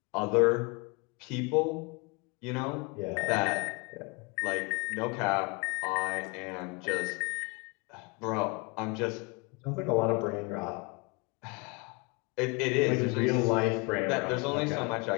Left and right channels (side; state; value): right; quieter; 28.2 dB